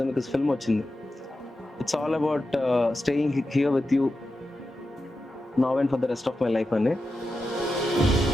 Zemeckis film వచ్చింది. It's all about staying here with you now and for the rest of my life అని.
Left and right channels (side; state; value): both; normal; correlation 0.91